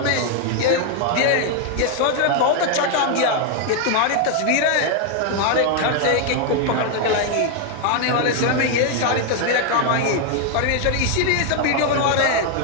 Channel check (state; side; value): different; both; correlation 0.01